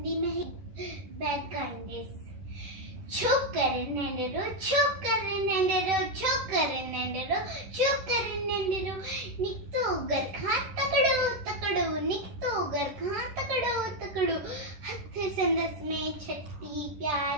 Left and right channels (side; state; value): left; late; 10 ms